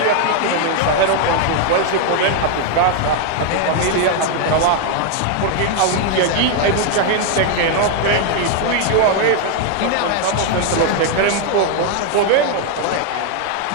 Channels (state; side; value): different; both; correlation 0.00